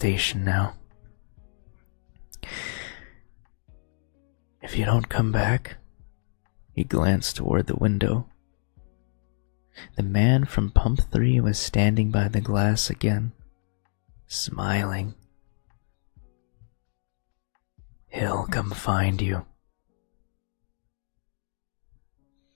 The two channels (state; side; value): silent; right; digital silence